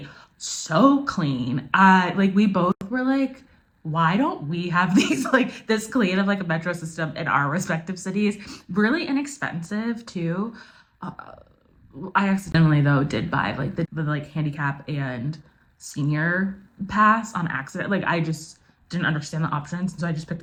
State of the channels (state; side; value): identical; both; correlation 1.00